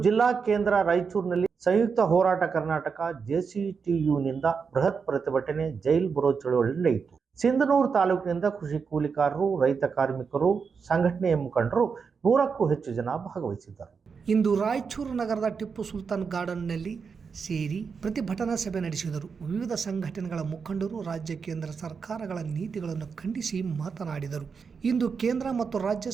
ಜಿಲ್ಲಾ ಕೇಂದ್ರ ರಾಯಚೂರಿನಲ್ಲಿ ಸಂಯುಕ್ತ ಹೋರಾಟ ಕರ್ನಾಟಕ JCTUನಿಂದ ಬೃಹತ್ ಪ್ರತಿಭಟನೆ ಜೈಲ್ ಬರೋ ಚಳವಳಿ ನಡೆಯಿತು. ಸಿಂಧನೂರು ತಾಲೂಕಿನಿಂದ ಕೃಷಿ ಕೂಲಿಕಾರರು, ರೈತ ಕಾರ್ಮಿಕರು, ಸಂಘಟನೆಯ ಮುಖಂಡರು 100ಕ್ಕೂ ಹೆಚ್ಚು ಜನ ಭಾಗವಹಿಸಿದ್ದರು. ಇಂದು ರಾಯಚೂರು ನಗರದ ಟಿಪ್ಪು ಸುಲ್ತಾನ್ ಗಾರ್ಡನ್ನಲ್ಲಿ ಸೇರಿ ಪ್ರತಿಭಟನಾ ಸಭೆ ನಡೆಸಿದರು. ವಿವಿಧ ಸಂಘಟನೆಗಳ ಮುಖಂಡರು ರಾಜ್ಯ ಕೇಂದ್ರ ಸರ್ಕಾರಗಳ ನೀತಿಗಳನ್ನು ಖಂಡಿಸಿ ಮಾತನಾಡಿದರು. ಇಂದು ಕೇಂದ್ರ ಮತ್ತು ರಾಜ್ಯ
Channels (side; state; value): left; quieter; 5.7 dB